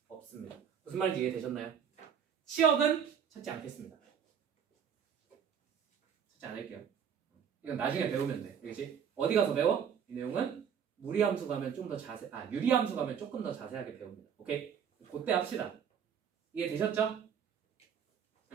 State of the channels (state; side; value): quieter; left; 7.8 dB